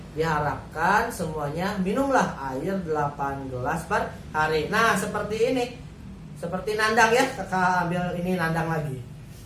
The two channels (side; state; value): both; identical; correlation 1.00